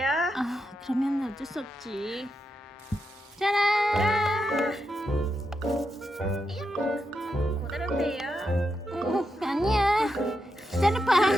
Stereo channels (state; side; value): normal; both; correlation 0.85